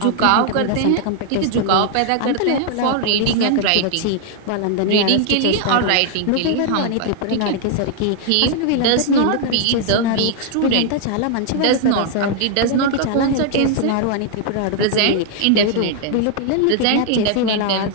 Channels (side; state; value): both; different; correlation 0.00